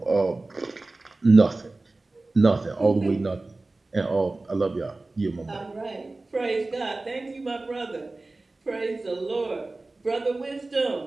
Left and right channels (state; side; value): quieter; left; 3.2 dB